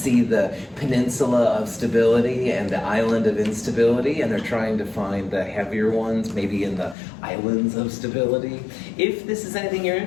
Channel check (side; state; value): right; drops out; at 7.0 s